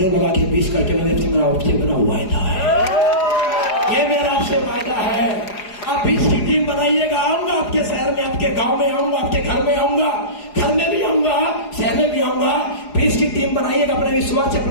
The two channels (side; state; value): right; late; 4.8 ms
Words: लगा के 20 करके मेरा आपसे मेरा वायदा है, ये मेरा आपसे वायदा है। आप 20 की टीम बनाइएगा, आऊंगा आपके शहर में, आपके गांव में आऊंगा, आपके घर में आऊंगा, घर में भी आऊंगा, शहर में भी आऊंगा। 20 की टीम बनाइएगा, अपने विश्वास से,